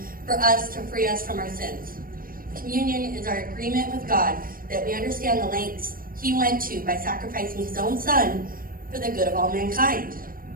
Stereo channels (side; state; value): left; late; 0.41 ms